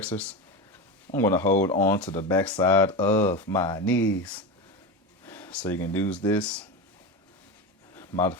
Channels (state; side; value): normal; both; correlation 0.20